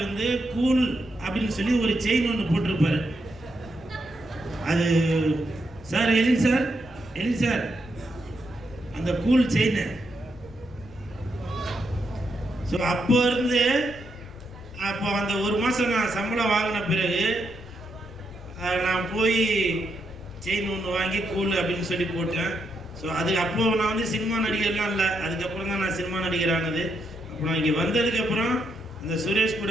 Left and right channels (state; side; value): noise; left; rumble, 21 dB below the sound